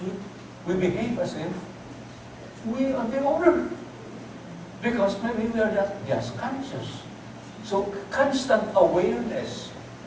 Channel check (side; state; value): both; identical; correlation 1.00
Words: we behave as if we are the owner. Because maybe we are not just conscious. So constant awareness